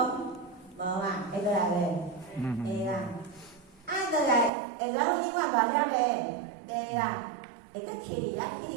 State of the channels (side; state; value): left; drops out; at 4.5 s